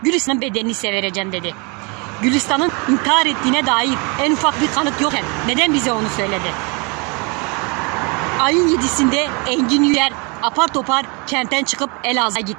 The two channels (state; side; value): quieter; left; 31.1 dB